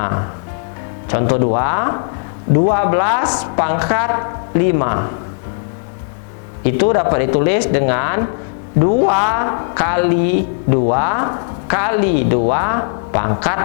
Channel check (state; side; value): silent; right; digital silence